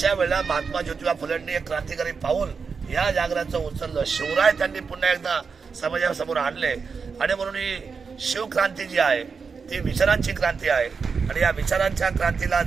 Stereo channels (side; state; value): left; quieter; 5.4 dB